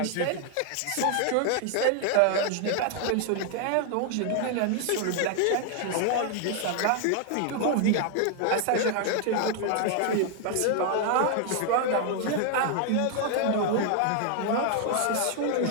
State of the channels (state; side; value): different; both; correlation 0.00